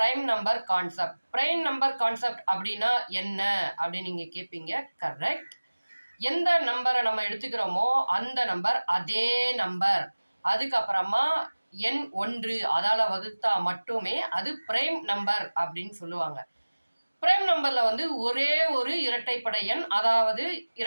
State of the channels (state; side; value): inverted; both; correlation -1.00